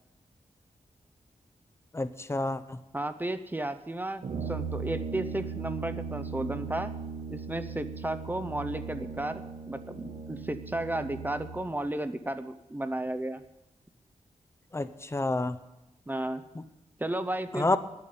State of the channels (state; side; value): normal; both; correlation 0.79